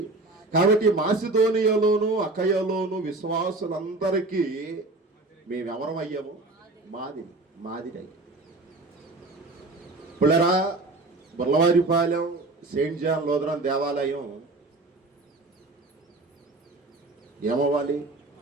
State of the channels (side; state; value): left; quieter; 3.1 dB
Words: కాబట్టి మాసిదోనియాలోను అకయలోను విశ్వాసులందరికీ మేమెవరమయ్యాము? మాదిరి. పుల్లరా, బుర్లవారిపాలెం సెయింట్ జాన్ లూథరన్ దేవాలయం ఏమవ్వాలి?